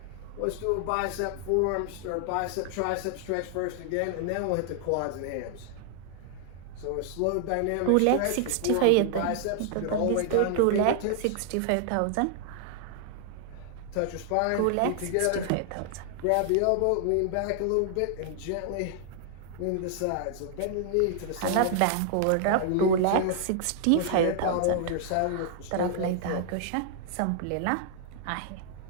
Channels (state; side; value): different; both; correlation 0.00